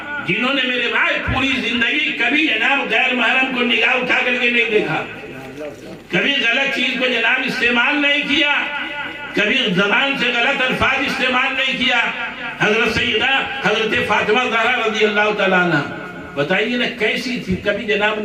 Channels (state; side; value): identical; both; correlation 1.00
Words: جنہوں نے میرے بھائی پوری زندگی کبھی جناب غیر محرم کو نگاہ اٹھا کر کے نہیں دیکھا، کبھی غلط چیز کو جناب استعمال نہیں کیا، کبھی زبان سے غلط الفاظ استعمال نہیں کیا۔ حضرت سیدہ حضرت فاطمہ زہرا رضی اللہ تعالیٰ عنہ، بتائیے نا کیسی تھی، کبھی جناب